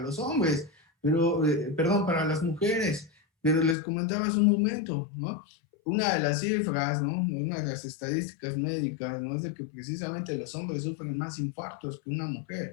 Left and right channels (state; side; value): drops out; right; at 3.8 s